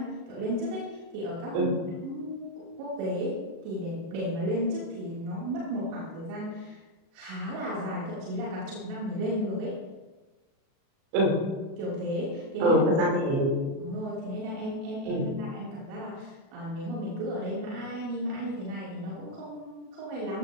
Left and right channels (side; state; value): left; late; 37 ms